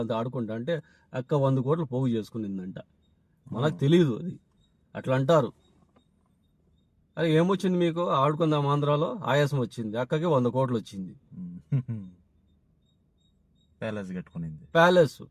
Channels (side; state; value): both; identical; correlation 1.00